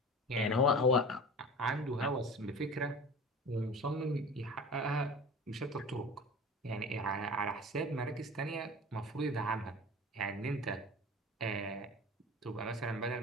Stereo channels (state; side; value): normal; both; correlation 0.36